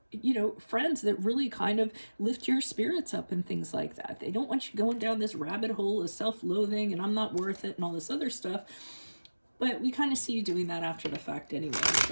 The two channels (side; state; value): both; inverted; correlation -1.00